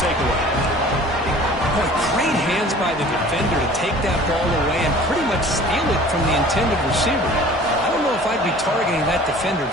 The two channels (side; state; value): both; normal; correlation 0.47